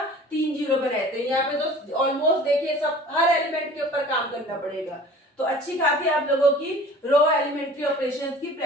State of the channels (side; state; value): both; normal; correlation 0.45